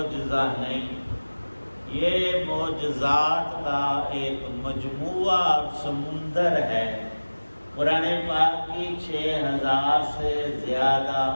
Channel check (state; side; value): inverted; both; correlation -1.00